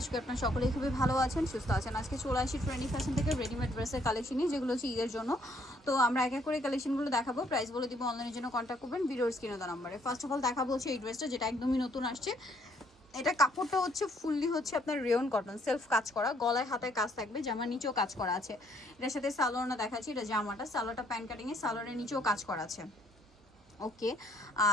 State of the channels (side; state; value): both; normal; correlation 0.66